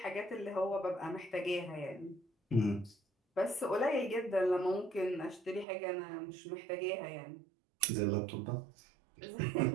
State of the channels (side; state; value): left; drops out; at 5.7 s